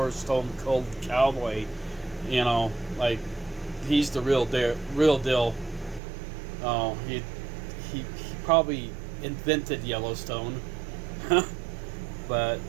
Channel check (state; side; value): drops out; left; at 6.0 s